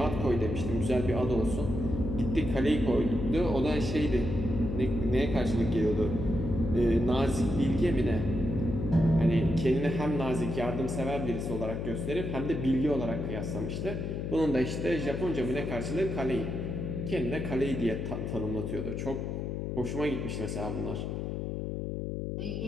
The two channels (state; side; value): noise; left; hum, 3 dB below the sound